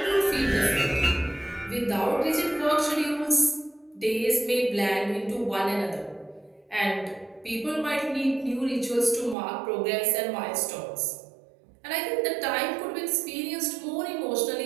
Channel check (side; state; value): left; drops out; at 9.3 s